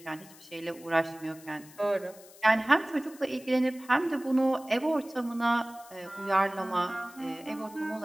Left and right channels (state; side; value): noise; left; hiss, 21 dB below the sound